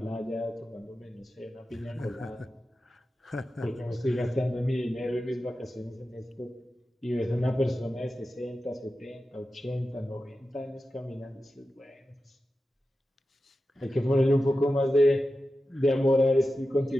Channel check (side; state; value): both; normal; correlation 0.92